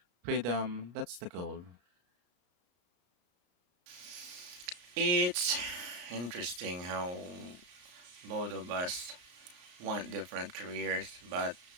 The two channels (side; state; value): left; late; 33 ms